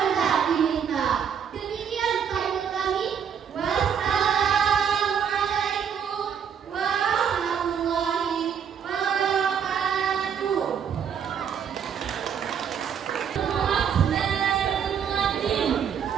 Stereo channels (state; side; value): quieter; left; 7.7 dB